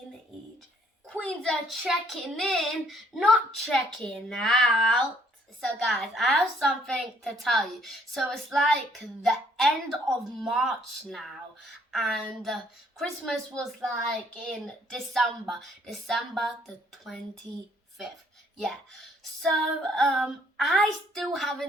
EJ. Queens are checking in, not checking out. So, guys, I have something to tell you. So, it's like the end of March now, and Christmas was like in December the 25th. Yeah. So, I still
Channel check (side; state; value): both; normal; correlation 0.64